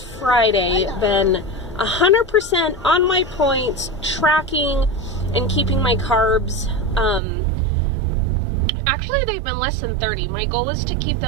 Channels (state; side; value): drops out; left; at 7.2 s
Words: Friday, been 100% on my points, tracking and keeping my carbs. Actually, they've been less than 30. My goal is to keep